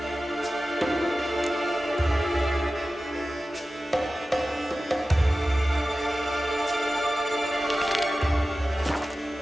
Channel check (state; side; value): normal; both; correlation 0.95